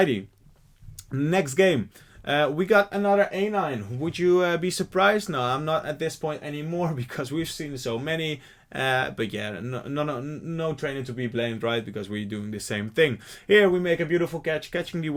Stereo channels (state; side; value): identical; both; correlation 1.00